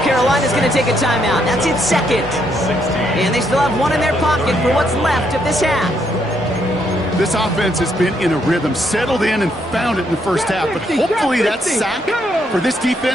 Carolina's going to take a timeout. That's its 2nd. And they still have 1 in their pocket for what's left of this half. This offense has been in a rhythm, settled in and found it in the first half, but hopefully that sack for this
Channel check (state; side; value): normal; both; correlation 0.74